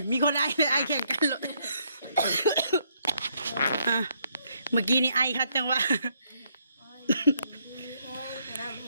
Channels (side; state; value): both; inverted; correlation -0.72